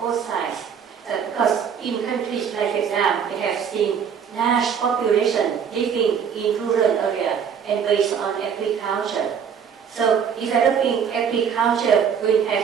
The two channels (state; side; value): quieter; left; 7.4 dB